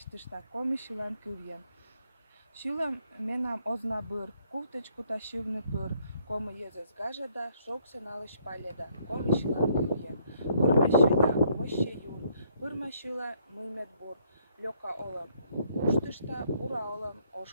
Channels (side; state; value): both; inverted; correlation -0.67